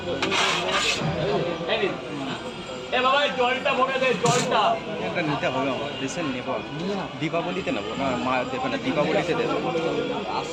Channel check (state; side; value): identical; both; correlation 1.00